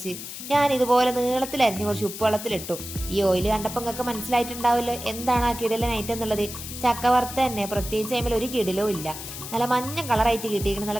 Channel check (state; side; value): noise; left; hiss, 10 dB below the sound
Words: ഞാൻ ഇതുപോലെ നീളത്തിലരിഞ്ഞ് കുറച്ച് ഉപ്പുവെള്ളത്തിലിട്ടു. ഈ ഓയിൽ കണ്ടപ്പോൾ നിങ്ങൾക്ക് മനസ്സിലായിട്ടുണ്ടാവുമല്ലോ എന്താണ് ആ കിടിലൻ ഐറ്റം എന്നുള്ളത്. ചക്ക വറുത്ത തന്നെ, പ്രത്യേകിച്ച് അതിൽ ഒരു കിടിലോ ഇല്ല. നല്ല മഞ്ഞ കളറായിട്ട് കിട്ടിയിരിക്കണം,